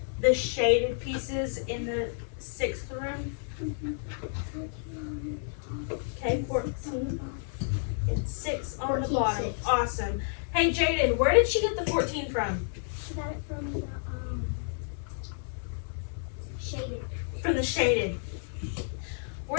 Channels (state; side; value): silent; right; digital silence